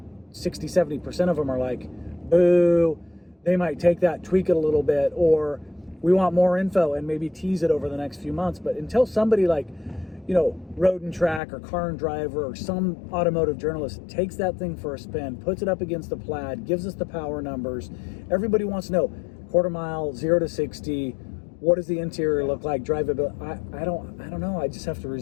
60, 70% of them are like, boo, they might take that, tweak it a little bit, or we want more info and maybe tease it over the next few months. But until somebody like, you know, Road and Track or Car and Driver or some automotive journalist takes that thing for a spin, puts it up against the Plaid, gives us the power numbers, everybody wants to know quarter mile, 0 to 60, what does the interior look like, drivability. I don't know. I just have to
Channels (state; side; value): drops out; right; at 11.4 s